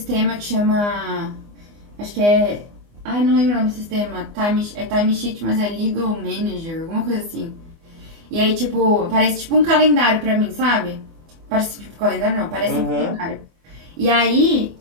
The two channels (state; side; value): late; left; 24 ms